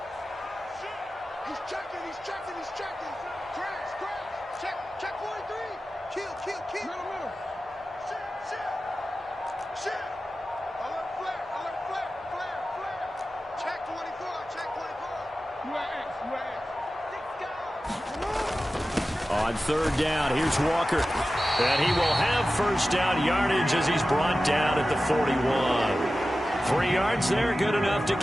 On 3rd down, here's Walker. And he will have 1st down yardage as he's brought down at the 41. 3 yards there, good enough to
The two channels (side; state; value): both; normal; correlation 0.94